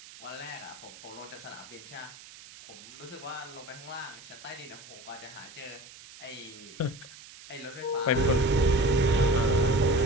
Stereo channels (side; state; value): right; noise; hiss, 18 dB below the sound